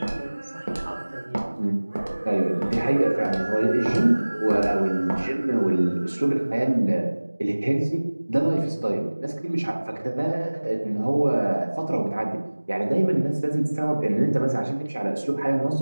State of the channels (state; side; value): inverted; both; correlation -1.00